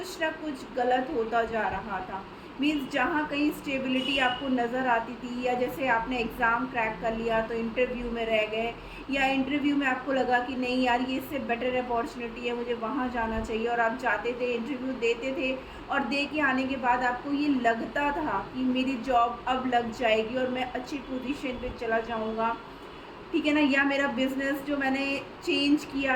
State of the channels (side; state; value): both; identical; correlation 1.00